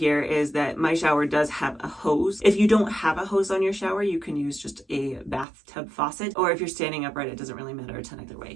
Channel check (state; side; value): drops out; left; at 5.5 s